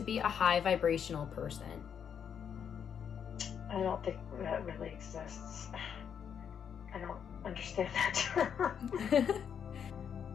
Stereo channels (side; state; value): right; quieter; 7.8 dB